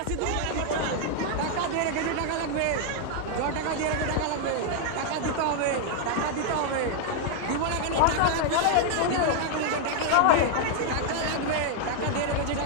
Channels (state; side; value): different; both; correlation 0.00